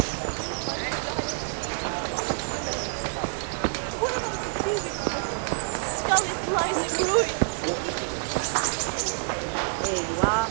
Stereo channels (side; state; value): left; silent; 60 dB below the other